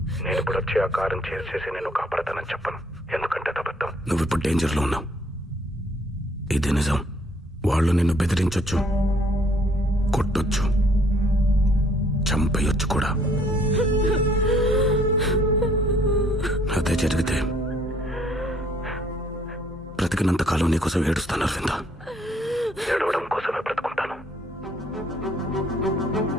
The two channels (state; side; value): normal; both; correlation 0.64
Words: నేను ఇప్పుడు వచ్చి ఆ కారం చేసేసి నేను కాపాడతానని చెప్పను, ఎందుకంటే అబద్ధం. నువ్వు ఇప్పుడు డేంజర్లో ఉన్నావు, ఇది నిజం. వాళ్ళు నిన్ను బెదిరించొచ్చు, కొట్టొచ్చు, చంపేయొచ్చు కూడా. అదే జరిగితే బ్రతికినంత కాలం నీకోసం ఏడుస్తాను అరవింద. ఏడవడం కోసమే బ్రతుకుంటాను.